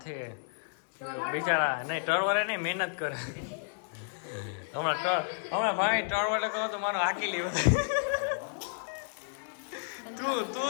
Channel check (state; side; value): silent; right; 57 dB below the other